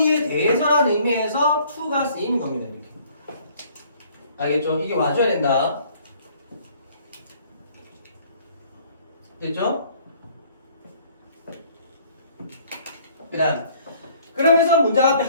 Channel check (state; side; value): inverted; both; correlation -0.58